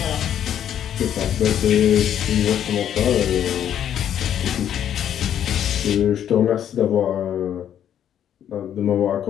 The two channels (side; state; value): right; quieter; 10.0 dB